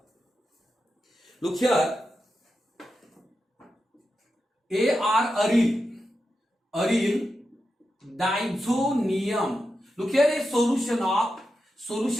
Look here, aryl diazonium. Look here, a solution of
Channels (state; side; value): normal; both; correlation 0.89